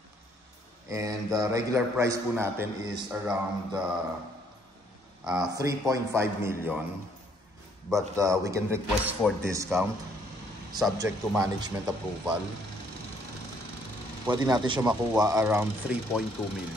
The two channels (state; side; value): normal; both; correlation 0.65